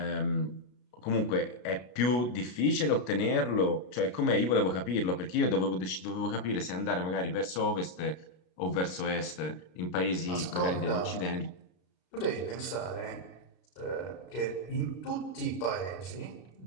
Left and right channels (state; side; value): late; right; 33 ms